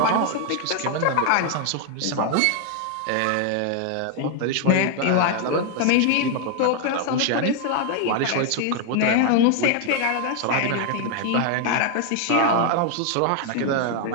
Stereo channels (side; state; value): both; different; correlation 0.00